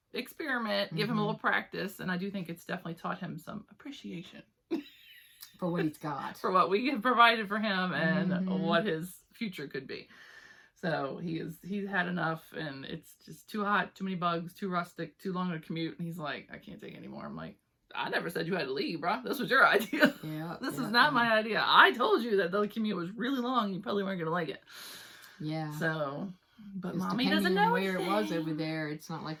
experiment, give him a little practice, and I do think it's definitely taught him some appreciation for what he's got, for what we have provided for him, and what his future could be. So he's had enough, and it's just too hot, too many bugs, too rustic, too long a commute. And he's like, I can't take it anymore. I'm like, I never said you had to leave, bro. This was your idea. Yeah. This is not my idea. I told you that the commute was really long. You probably weren't gonna like it. Yeah. So, but just mommy doesn't know where it was over there. It's not like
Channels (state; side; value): identical; both; correlation 1.00